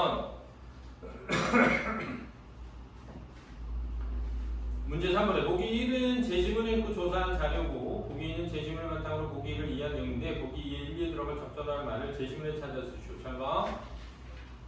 문제 3번에 보기 1은 제시문을 읽고 조사한 자료고 보기 2는 제시문을 바탕으로 보기 1을 이해한 내용인데 보기 2에 1에 들어갈 적절한 말을 제시문에 찾아 쓰시오. 잘 봐.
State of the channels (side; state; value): both; identical; correlation 1.00